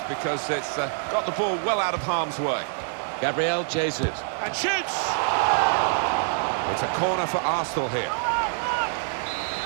because it's got the ball well out of harm's way. Gabriel Jesus. And shoots! It's a corner for Arsenal here.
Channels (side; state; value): left; silent; digital silence